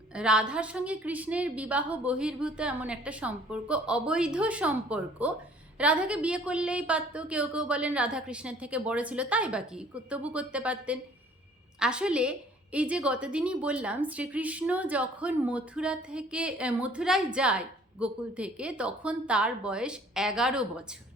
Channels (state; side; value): normal; both; correlation 0.55